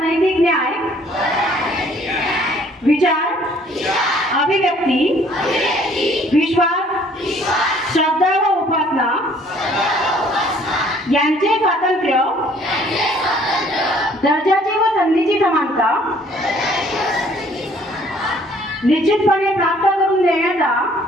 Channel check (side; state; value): both; normal; correlation 0.59